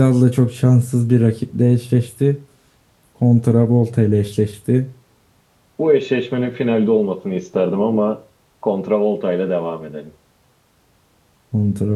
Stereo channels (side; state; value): both; identical; correlation 1.00